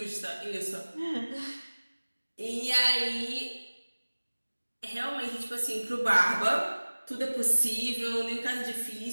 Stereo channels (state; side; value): inverted; both; correlation -1.00